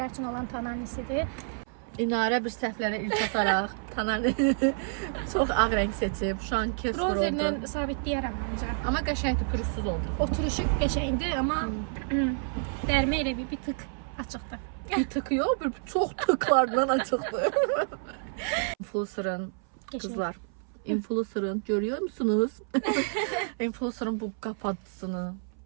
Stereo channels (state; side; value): silent; left; 58 dB below the other